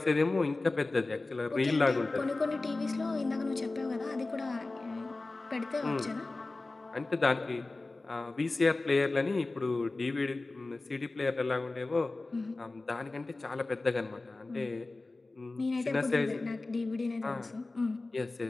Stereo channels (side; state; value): right; quieter; 3.2 dB